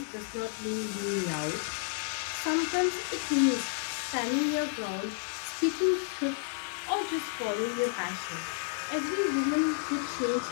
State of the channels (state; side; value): silent; right; digital silence